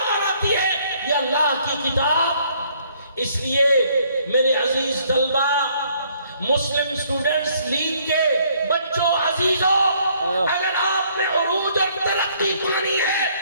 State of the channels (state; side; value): inverted; both; correlation -0.64